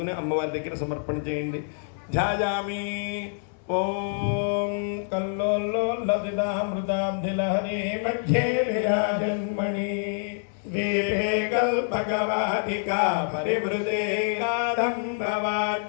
అమ్మవారి దగ్గర సమర్పణ చేయండి ధ్యాయామి ఓం కల్లోల్లసితామృతాబ్ధిలహరి మధ్యే విరాజన్మణి దీపే కల్పకవాటికా పరివృతే నాదంబవాద్యుజ్వలే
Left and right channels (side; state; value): right; silent; digital silence